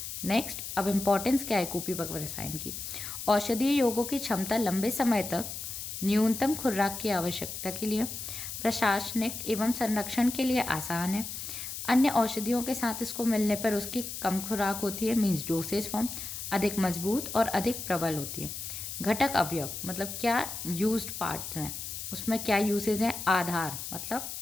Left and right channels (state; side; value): noise; left; hiss, 7 dB below the sound